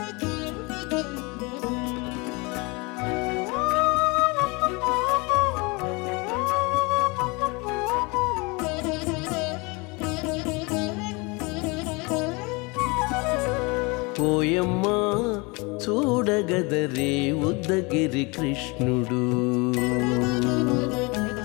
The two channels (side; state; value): right; quieter; 27.4 dB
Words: ఓయమ్మా చూడగదరే ఉద్దగిరి కృష్ణుడు.